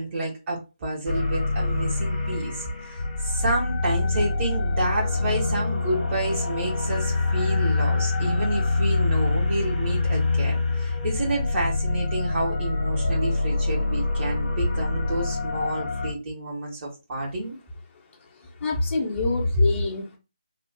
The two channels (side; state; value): both; inverted; correlation -0.83